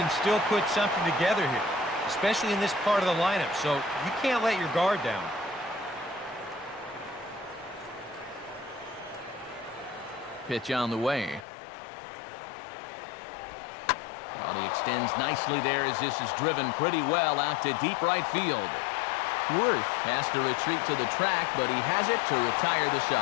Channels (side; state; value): right; drops out; at 11.5 s